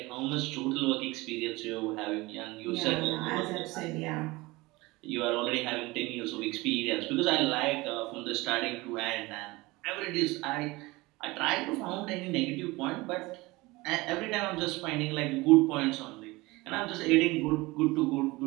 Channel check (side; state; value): left; quieter; 21.9 dB